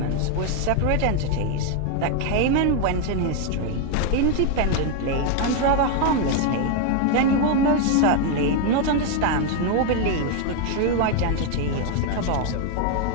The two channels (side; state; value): both; different; correlation 0.01